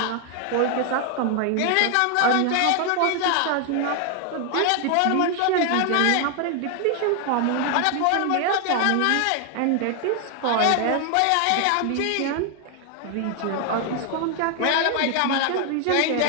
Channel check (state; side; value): different; both; correlation 0.00